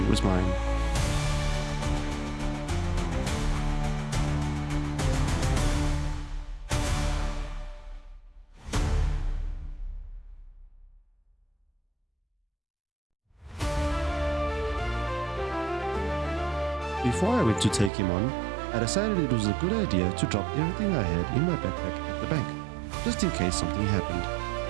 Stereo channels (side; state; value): left; drops out; at 17.9 s